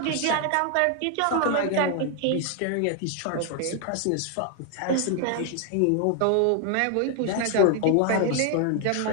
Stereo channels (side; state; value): both; different; correlation 0.00